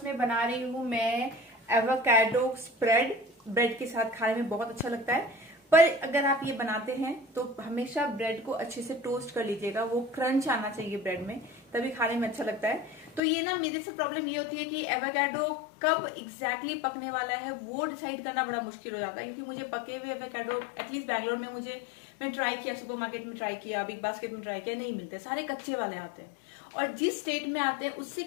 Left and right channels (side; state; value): right; drops out; at 13.2 s